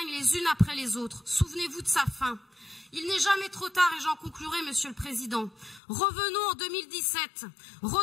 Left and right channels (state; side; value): drops out; right; at 5.8 s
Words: les unes après les autres. Souvenez-vous de sa fin. Il n'est jamais trop tard et j'en conclurai, Monsieur le Président. Revenons en 2017,